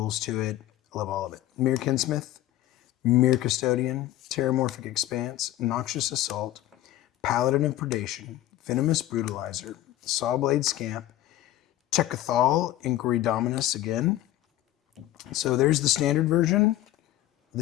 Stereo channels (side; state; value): right; quieter; 14.4 dB